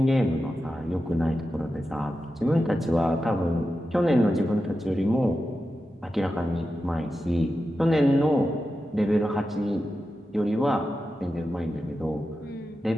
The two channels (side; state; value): both; normal; correlation 0.91